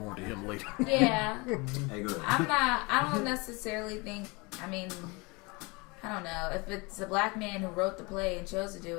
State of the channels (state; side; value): quieter; right; 27.2 dB